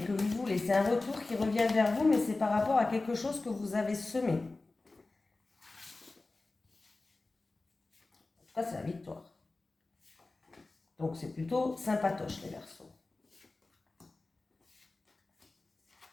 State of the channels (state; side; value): quieter; right; 3.3 dB